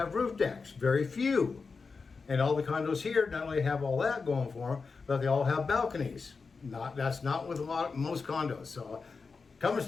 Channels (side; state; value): right; quieter; 4.7 dB